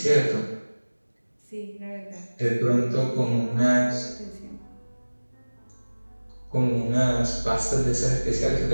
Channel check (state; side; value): inverted; both; correlation -1.00